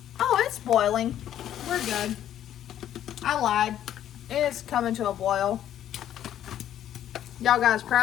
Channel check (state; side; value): quieter; right; 11.2 dB